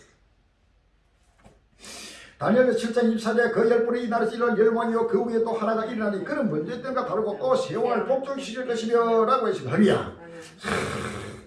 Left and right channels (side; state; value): both; identical; correlation 1.00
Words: 다니엘 7장 24절에 그 열불이 이 나라에서 일어날 열왕이요 그 위에 또 하나가 일어나니 그는 먼저 때과 다르고 또 세왕을 복종시킬 것이며 라고 했습니다. 할렐루야.